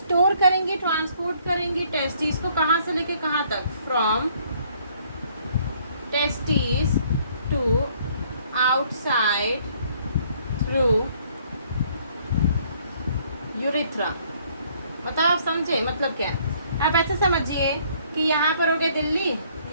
करेंगे, ट्रांसपोर्ट करेंगे टेस्टिस को कहाँ से लेके कहाँ तक, from testis to outside through urethra. मतलब आप समझे मतलब क्या है। आप ऐसे समझिए कि यहाँ पर हो गया दिल्ली,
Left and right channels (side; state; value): both; inverted; correlation -0.63